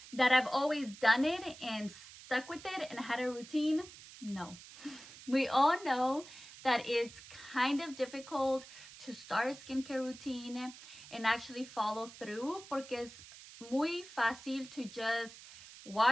That I've always done it and stuck with it and had a routine? No. We all know that it's kind of difficult to start a skincare routine and actually follow through, porque es muy fácil to just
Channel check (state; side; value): noise; right; hiss, 17 dB below the sound